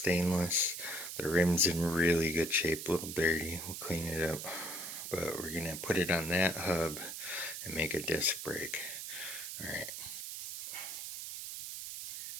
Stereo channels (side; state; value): right; noise; hiss, 7 dB below the sound